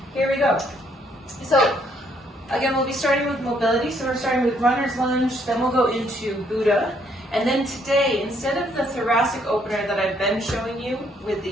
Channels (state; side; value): normal; both; correlation 0.69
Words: here we go. So, again, we'll be starting with mobility. So we're starting with runner's lunge, then we'll go into Buddha. And then today, instead of the thoracic opener that I've been showing you with